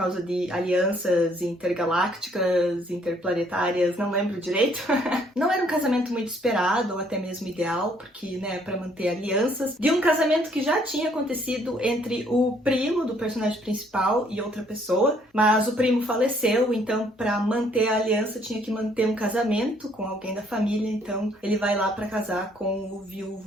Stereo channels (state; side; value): normal; both; correlation 0.65